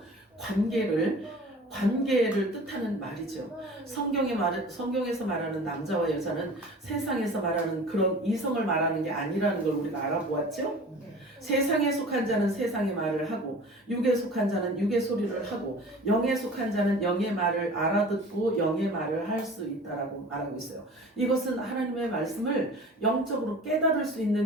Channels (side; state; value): both; normal; correlation 0.42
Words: 관계를 뜻하는 말이죠. 성경에서 말하는 남자와 여자는 세상에서 말하는 그런 이성을 말하는 게 아니라는 걸 우리가 알아보았죠. 세상에 속한 자는 세상의 말을 하고 육에 속한 자는 육의 소리를 하고 영에 속한 자는 영의 말을 알아듣고 영의 말을 할 수 있다라고 말하고 있어요. 이것은 하나님의 말씀을 영적으로 깨달을 수